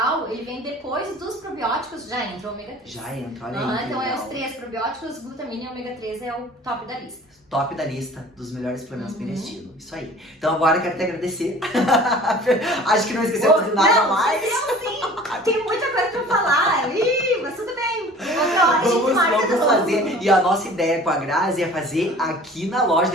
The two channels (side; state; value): both; normal; correlation 0.46